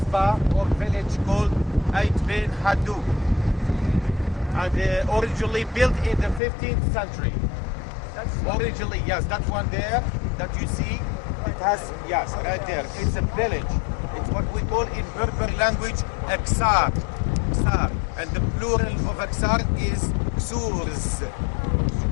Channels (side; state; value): right; drops out; at 6.4 s